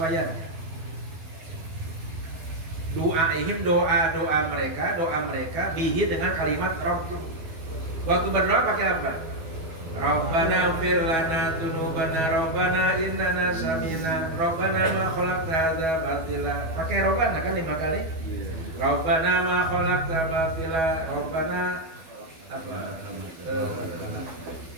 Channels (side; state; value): left; late; 12 ms